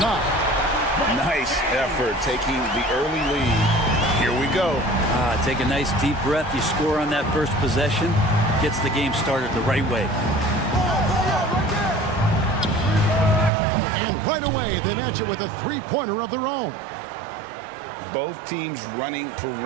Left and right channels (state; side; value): drops out; left; at 13.5 s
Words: Nice effort taking the early lead. Here we go. Take a nice deep breath. You score on that first possession. Gets the game started the right way. And right away, they match it with a three-pointer of their own. Both teams running